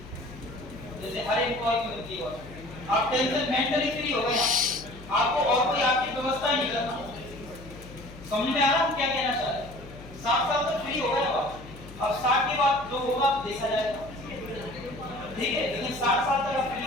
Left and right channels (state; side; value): noise; left; hum, 17 dB below the sound